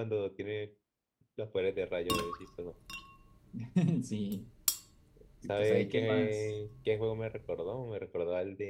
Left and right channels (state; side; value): identical; both; correlation 1.00